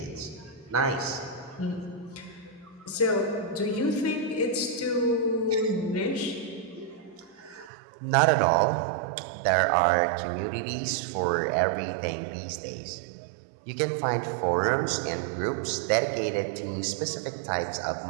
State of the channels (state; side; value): drops out; left; at 7.7 s